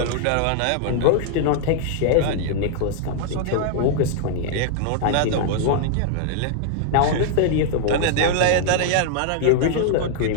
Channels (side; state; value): both; different; correlation -0.01